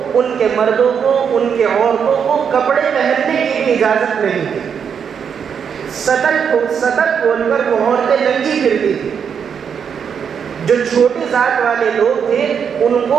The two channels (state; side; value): quieter; left; 7.2 dB